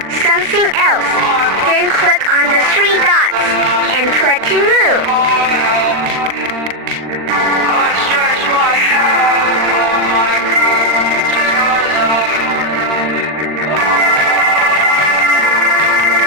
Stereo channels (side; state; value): left; late; 39 ms